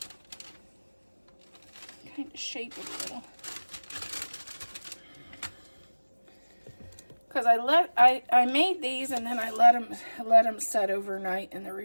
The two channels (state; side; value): inverted; both; correlation -1.00